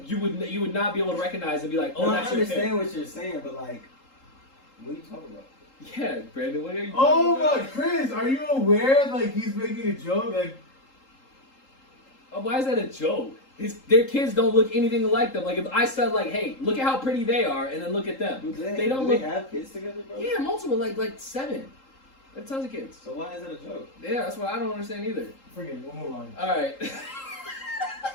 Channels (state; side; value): late; right; 3.8 ms